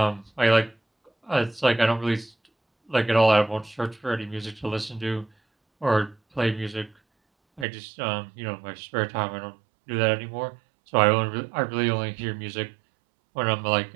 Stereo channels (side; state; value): left; drops out; at 7.7 s